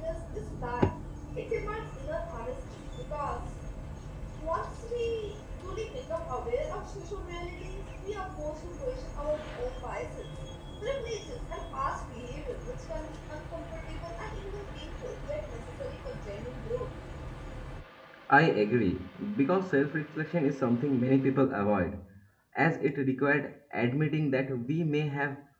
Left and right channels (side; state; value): both; identical; correlation 1.00